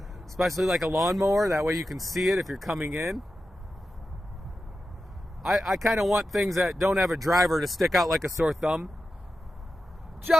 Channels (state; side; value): normal; both; correlation 0.91